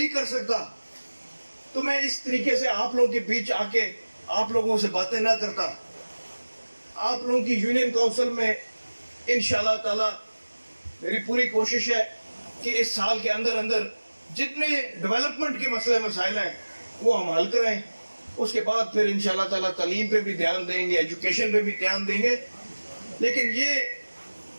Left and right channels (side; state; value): both; inverted; correlation -1.00